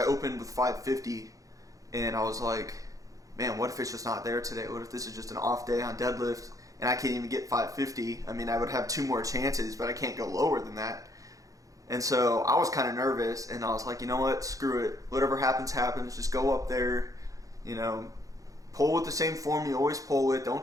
opened with 550, and I was like, man, what if it's just not there today? What if this is just an off day on deadlift and I can't even get 550? I mean, I would have 2 more chances, but I can't go lower than that. And so I was kind of nervous, and I was like, you know what, screw it. Whatever happens, happens. Just go up there, pull with the same form you always pull with. Don't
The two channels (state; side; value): late; left; 0.17 ms